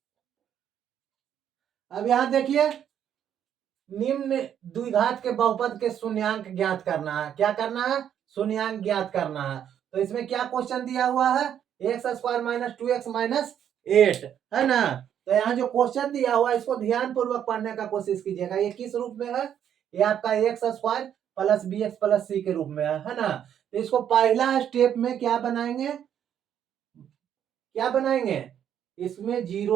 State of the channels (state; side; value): quieter; left; 9.5 dB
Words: अब यहां देखिए, निम्न द्विघात के बहुपद के शून्यांक ज्ञात करना है। क्या करना है, शून्यांक ज्ञात करना है। तो इसमें क्या क्वेश्चन दिया हुआ है, X square minus 2x minus 8 है ना। तो यहाँ जो क्वेश्चन दिया हुआ है इसको ध्यान पूर्वक पढ़ने का कोशिश कीजिएगा। ये किस रूप में है, ये आपका X square plus B X plus C के रूप में है ना। तो इसको पहला स्टेप में क्या बनाएंगे, क्या बनाएंगे, इसमें